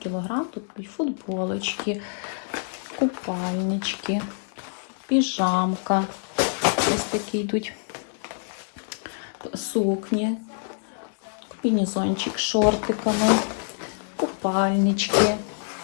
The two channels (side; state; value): right; silent; digital silence